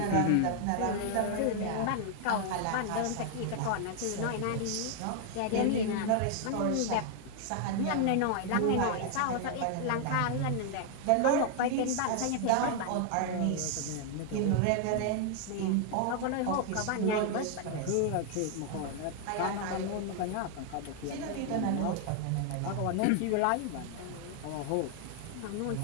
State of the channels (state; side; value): different; both; correlation 0.00